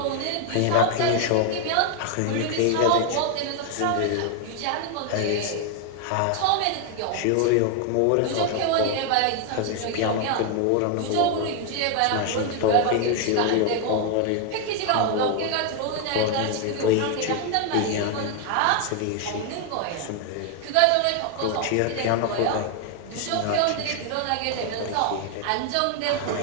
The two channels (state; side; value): different; both; correlation 0.00